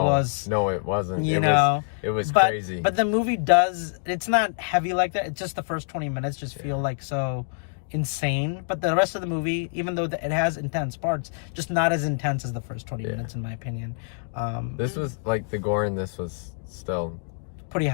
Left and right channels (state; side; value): silent; right; digital silence